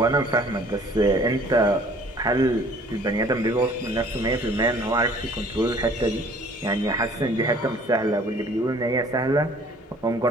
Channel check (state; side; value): normal; both; correlation 0.53